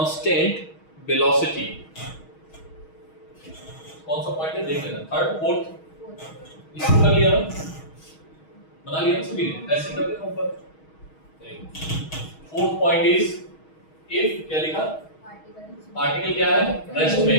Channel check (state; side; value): late; right; 6.3 ms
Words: velocity, कौन सा पॉइंट है देख लेना, थर्ड फोर्थ, इसको कर लिया ना, बना लिया ना सभी ने, ऐसे कर देना ऊपर। फोर्थ पॉइंट इज, इफ क्या लिखा? पार्टिकल क्या है, रेस्ट में